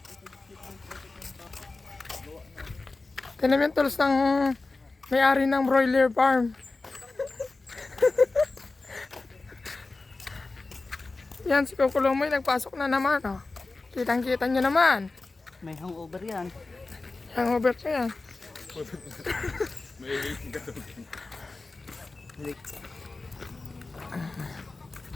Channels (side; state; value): right; quieter; 3.5 dB